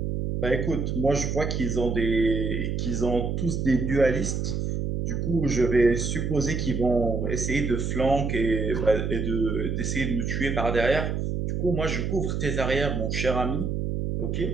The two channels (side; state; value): right; noise; hum, 1 dB below the sound